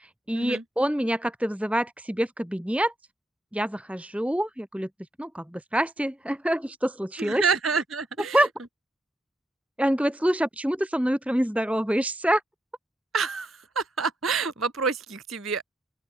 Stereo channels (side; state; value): both; normal; correlation 0.82